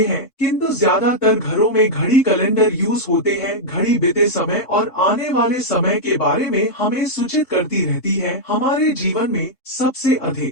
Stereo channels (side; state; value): right; late; 3.6 ms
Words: हैं, किंतु ज्यादातर घरों में घड़ी कैलेंडर यूज होते हैं। घड़ी बीते समय और आने वाले समय के बारे में हमें सूचित करती रहती है। हमारे जीवन में सबसे